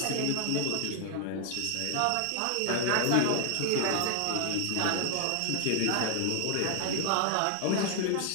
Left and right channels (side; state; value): both; different; correlation 0.00